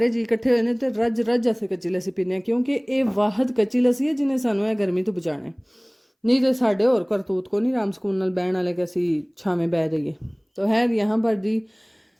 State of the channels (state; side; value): identical; both; correlation 1.00